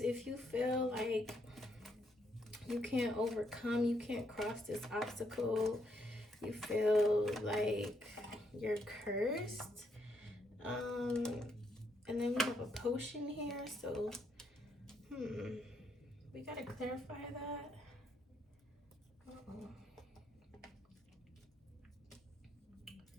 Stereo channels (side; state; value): both; normal; correlation 0.75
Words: if you feel like you can't overcome, you can't cross this obstacle, you feel like you're cursed, and then we have a potion here, so we gotta clarify that.